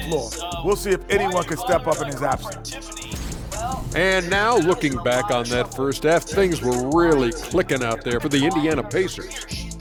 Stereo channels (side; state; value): both; identical; correlation 1.00